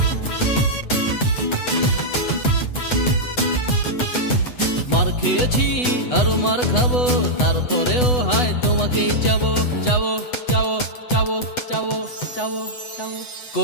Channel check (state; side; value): late; right; 8.1 ms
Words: মার খেয়েছি আরো মার খাবো, তারপরেও হয় তোমাকেই চাবো। চাবো চাবো চাবো চাবো চাবো চাবো,